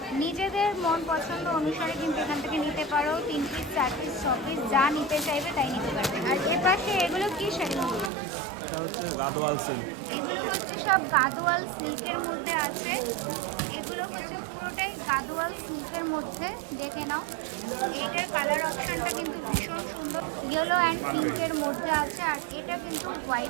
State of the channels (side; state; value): left; drops out; at 8.1 s